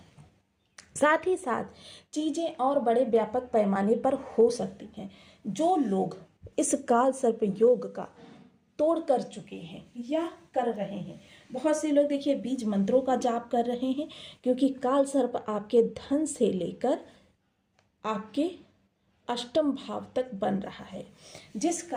साथ ही साथ चीज़ें और बड़े व्यापक पैमाने पर हो सकती हैं। जो लोग इस काल सर्प योग का तोड़ कर चुके हैं या कर रहे हैं, बहुत से लोग देखिए बीज मंत्रों का जाप कर रहे हैं, क्योंकि काल सर्प आपके धन से लेकर आपके अष्टम भाव तक बन रहा है, जिस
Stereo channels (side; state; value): both; identical; correlation 1.00